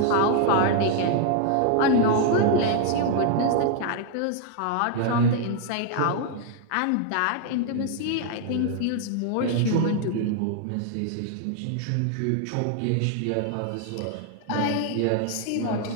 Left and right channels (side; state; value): both; different; correlation 0.00